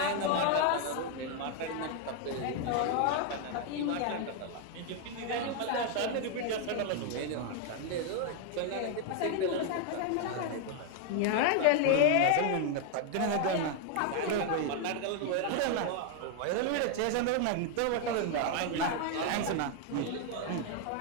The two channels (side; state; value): both; different; correlation 0.00